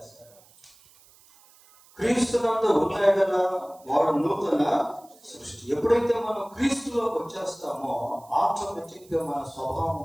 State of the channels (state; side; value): noise; right; hiss, 27 dB below the sound